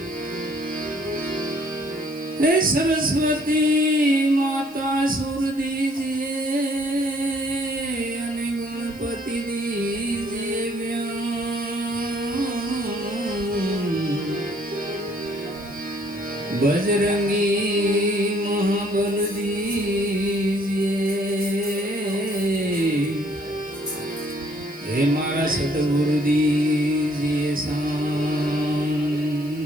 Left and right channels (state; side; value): noise; left; hiss, 23 dB below the sound